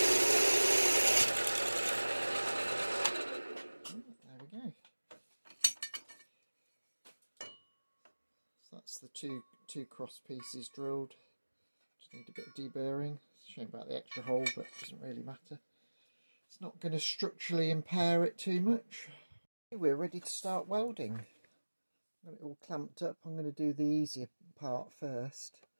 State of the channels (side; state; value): both; inverted; correlation -1.00